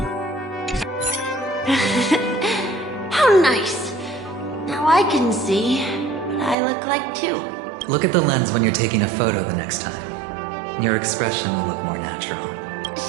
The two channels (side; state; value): left; drops out; at 6.6 s